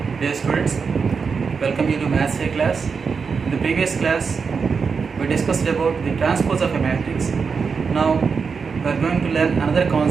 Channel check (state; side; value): quieter; left; 5.5 dB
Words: Dear students, welcome you to Maths A class. In the previous class, we discussed about the transpose of a matrix. Now, we are going to learn another